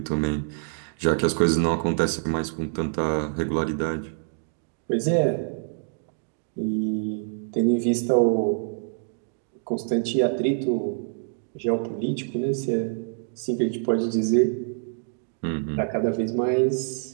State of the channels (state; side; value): silent; left; digital silence